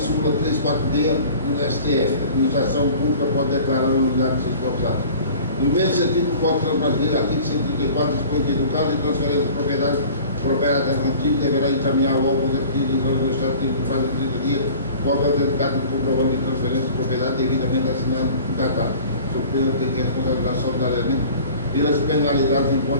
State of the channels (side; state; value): both; inverted; correlation -0.45